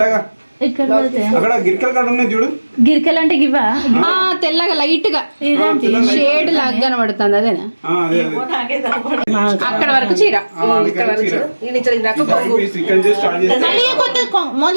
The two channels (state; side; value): inverted; both; correlation -1.00